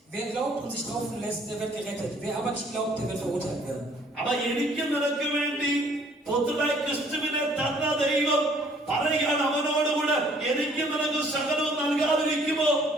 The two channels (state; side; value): normal; both; correlation 0.60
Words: Wer glaubt und sich taufen lässt, der wird gerettet. Wer aber nicht glaubt, der wird verurteilt werden. Aber എനിക്ക് നിനക്ക് വേണ്ടി പുത്രനായ ക്രിസ്തുവിനെ തന്ന ദൈവം പറയുകയാണ്, അവനോടുകൂടെ എനിക്ക് നിനക്ക് സകലവും നൽകാതിരിക്കുമോ?